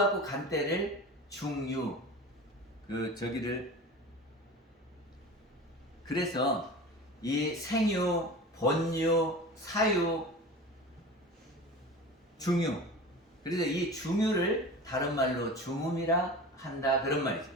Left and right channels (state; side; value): normal; both; correlation 0.34